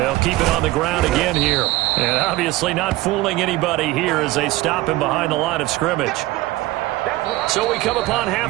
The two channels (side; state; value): left; quieter; 18.1 dB